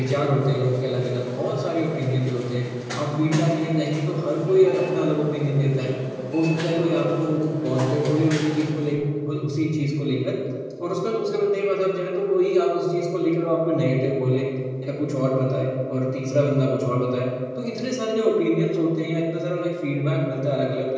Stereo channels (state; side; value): identical; both; correlation 1.00